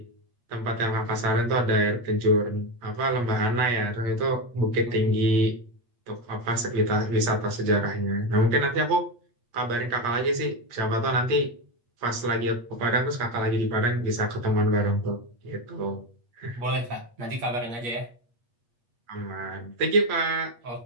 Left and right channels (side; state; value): left; late; 8.4 ms